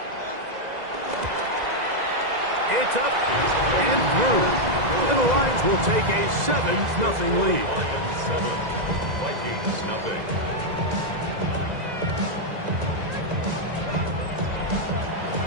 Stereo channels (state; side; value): late; left; 2.0 ms